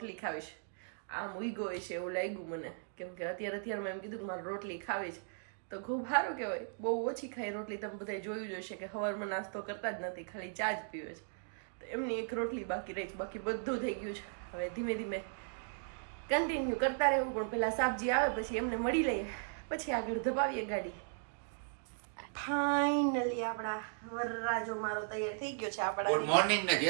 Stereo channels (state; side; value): silent; left; digital silence